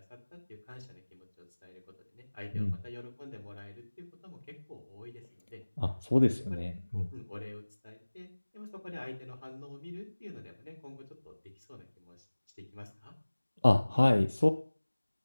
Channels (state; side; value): inverted; both; correlation -1.00